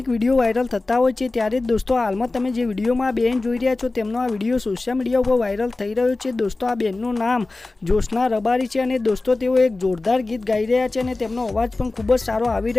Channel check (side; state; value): right; quieter; 3.2 dB